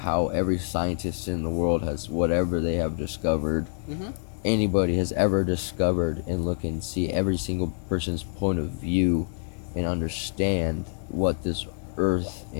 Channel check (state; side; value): silent; right; 60 dB below the other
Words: how every scientist in the world has whatever they have discovered, anybody has ever discovered, and look and see every single person's point of view and understand what this earth